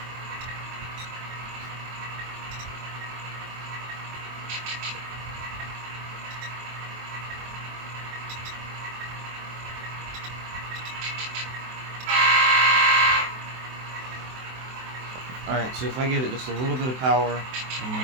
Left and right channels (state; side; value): late; left; 23 ms